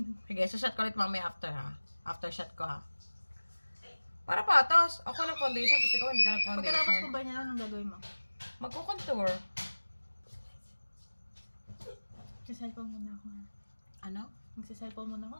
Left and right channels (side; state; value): both; inverted; correlation -1.00